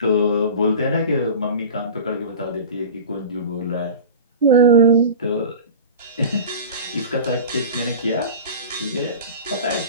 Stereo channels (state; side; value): inverted; both; correlation -0.35